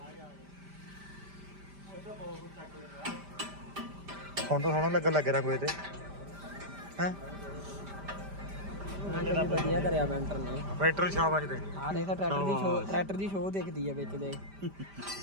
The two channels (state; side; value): late; left; 5.1 ms